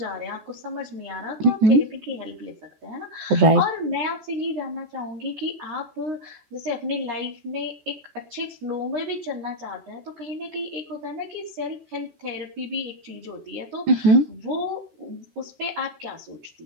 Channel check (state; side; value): late; left; 14 ms